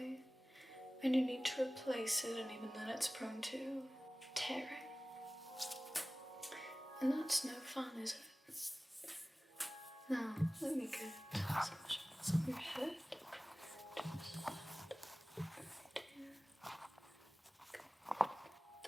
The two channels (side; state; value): both; normal; correlation 0.98